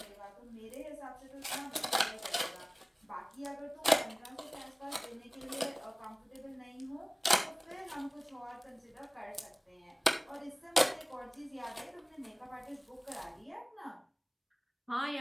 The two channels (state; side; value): identical; both; correlation 1.00